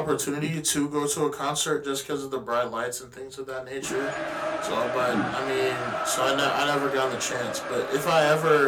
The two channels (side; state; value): both; identical; correlation 1.00